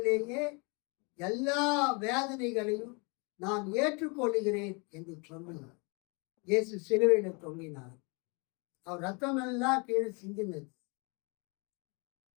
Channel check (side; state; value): right; quieter; 31.9 dB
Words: எல்லா வேதனைகளையும் நான் ஏற்றுக்கொள்கிறேன் என்று சொன்னார். இயேசு சிலுவையில தொங்கினார். அவர் ரத்தம் எல்லாம் கீழே சிந்தினது.